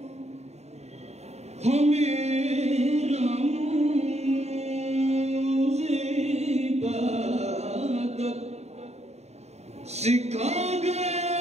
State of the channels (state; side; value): late; left; 0.32 ms